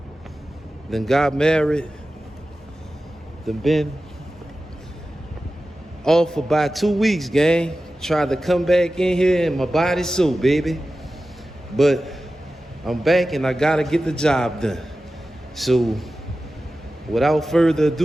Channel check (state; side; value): normal; both; correlation 0.94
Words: then got married, then been off for about 2 weeks, gang. Tried to come back in here and my body's so, baby. But I'm back and I gotta get the job done. So without further